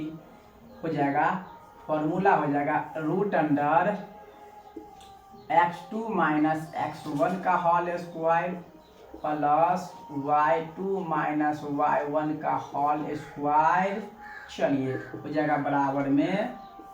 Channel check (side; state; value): both; identical; correlation 1.00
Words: हो जाएगा, फॉर्मूला हो जाएगा root under x2 minus x1 का whole square plus y2 minus y1 का होल स्क्वायर। चलिए हो जाएगा बराबर में